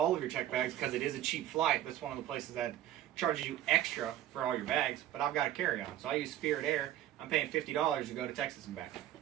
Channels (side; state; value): left; quieter; 12.6 dB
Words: of your check bags because it is a cheap flight. That's one of the places that charges you extra for all your bags. But I've got a carry-on, so I use Spirit Air. I'm paying $50 to go to Texas and back.